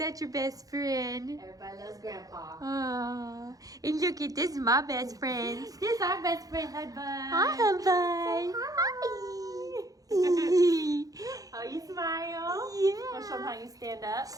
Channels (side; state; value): left; late; 0.17 ms